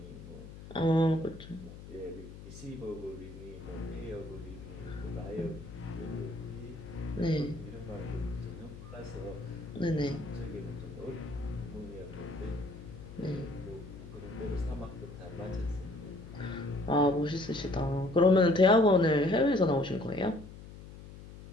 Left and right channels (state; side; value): noise; left; hum, 15 dB below the sound